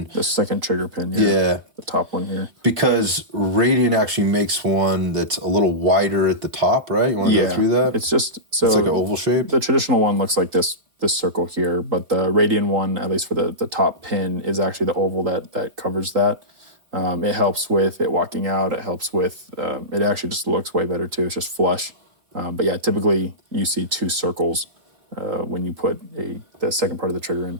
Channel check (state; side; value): late; left; 3.8 ms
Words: The second trigger pin, yeah. Yeah. The top one here. Because Radian actually makes one that's a little wider at the top, right? You want to go through that? It's just so it's like an oval shape. The traditional one looks like this circle here, but the Radian one, at least for the top pin, is actually the oval that covers that. It helps with it walking out. It helps with it actually just looks way better too. It's just flush. But yeah, typically you see 2 circles when you put the second part of the trigger